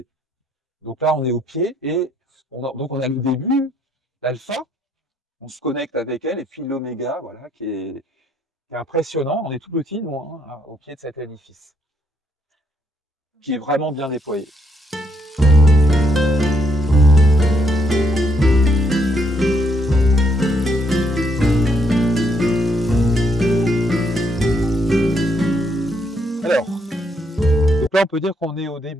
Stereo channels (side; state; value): both; normal; correlation 0.73